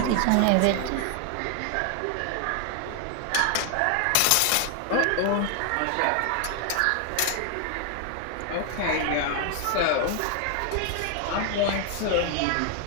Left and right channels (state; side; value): different; both; correlation 0.00